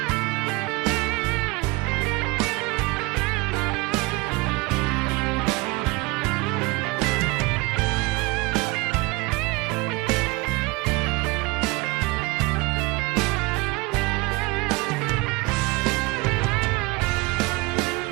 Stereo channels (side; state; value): left; quieter; 23.9 dB